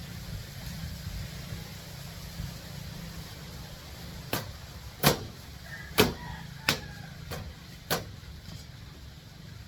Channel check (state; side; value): identical; both; correlation 1.00